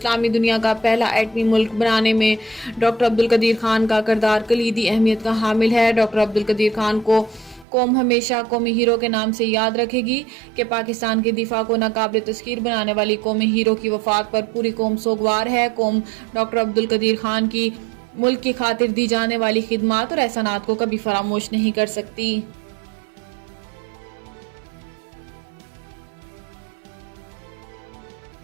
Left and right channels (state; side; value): drops out; left; at 7.7 s